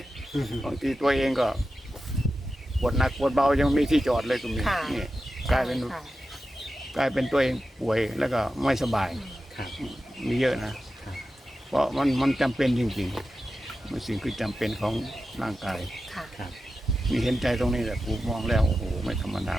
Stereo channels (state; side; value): normal; both; correlation 0.92